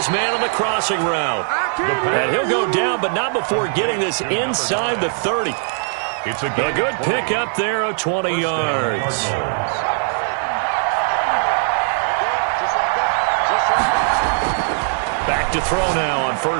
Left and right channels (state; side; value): silent; left; digital silence